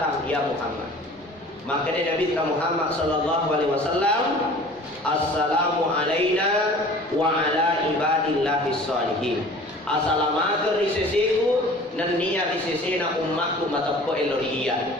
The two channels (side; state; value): both; normal; correlation 0.45